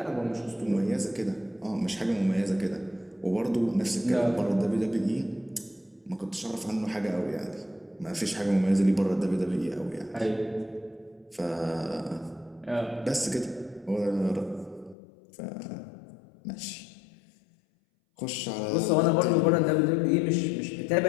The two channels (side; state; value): right; drops out; at 15.0 s